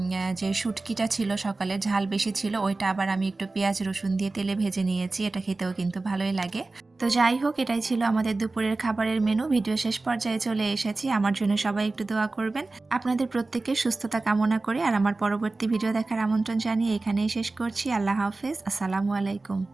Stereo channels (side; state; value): left; quieter; 3.3 dB